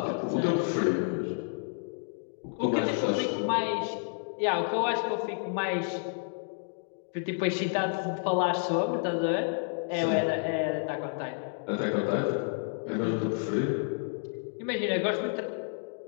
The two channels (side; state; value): right; silent; digital silence